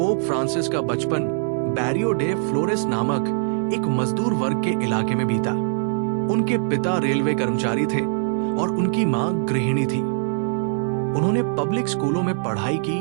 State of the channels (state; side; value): silent; left; 63 dB below the other